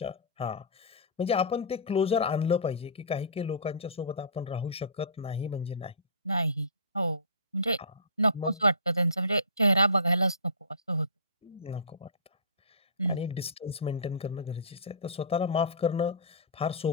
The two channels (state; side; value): inverted; both; correlation -0.33